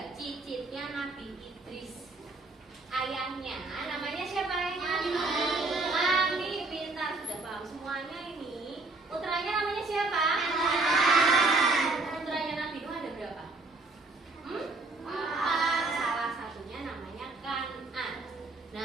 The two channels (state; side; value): quieter; left; 3.4 dB